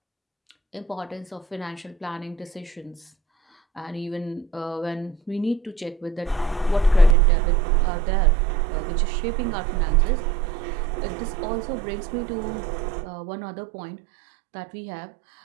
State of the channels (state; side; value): drops out; left; at 7.2 s